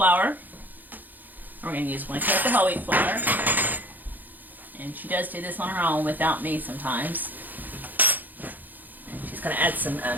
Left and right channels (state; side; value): late; left; 0.085 ms